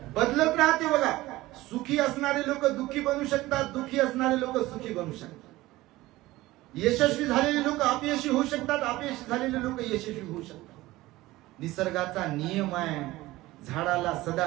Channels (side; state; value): left; quieter; 18.1 dB